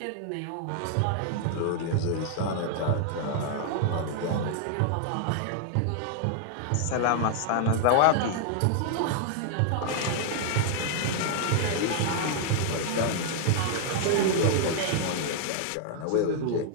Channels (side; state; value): both; different; correlation 0.00